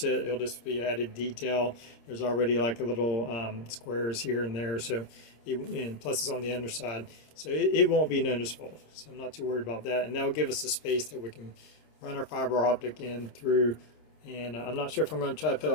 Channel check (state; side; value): late; right; 26 ms